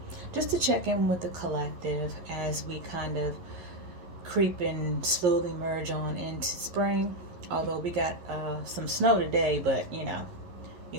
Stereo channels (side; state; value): left; late; 11 ms